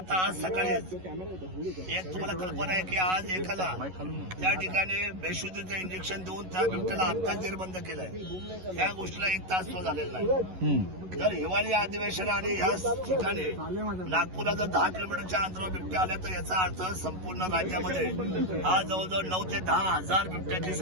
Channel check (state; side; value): late; left; 11 ms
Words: आज सकाळी एक तुम्हाला कल्पना आहे की आज एकाला त्या ठिकाणी बेशुद्धीचं इंजेक्शन देऊन त्या बिबट्याला आत्ताच जेरबंद केलंय. या गोष्टीला 1 तास तो झालेला नाही. जर हिवाळी अधिवेशन आणि ह्या ठिकाणी नागपूरला जर 10 किलोमीटरच्या अंतरावर बिबट्या आल्या तर याचा अर्थ संपूर्ण राज्यामध्ये आज जवळजवळ 9 ते 10 हजार बिबट्याची